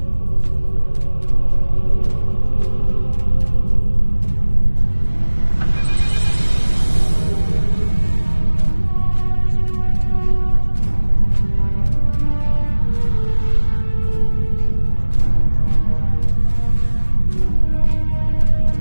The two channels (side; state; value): both; inverted; correlation -1.00